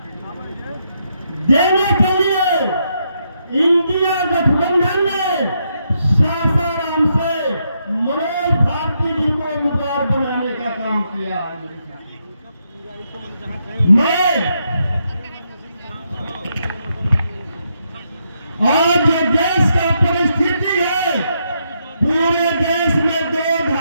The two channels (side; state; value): both; inverted; correlation -0.79